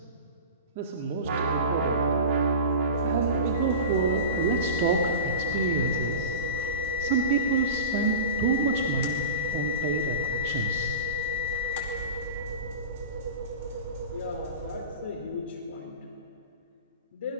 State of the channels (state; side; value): inverted; both; correlation -0.31